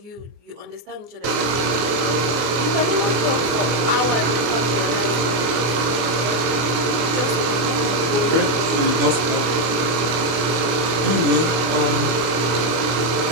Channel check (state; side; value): late; left; 24 ms